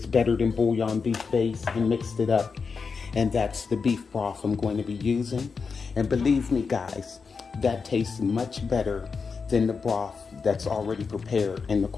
better than bouillon beef base and mixed it up. And that's the beef broth I'm going to be using. And believe me guys, that tastes much better than the broth that's already prepared in the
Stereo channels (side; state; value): right; quieter; 5.2 dB